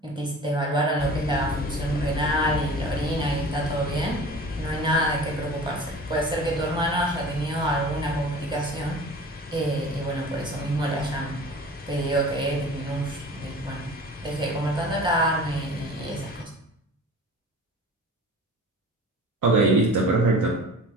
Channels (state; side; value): normal; both; correlation 0.41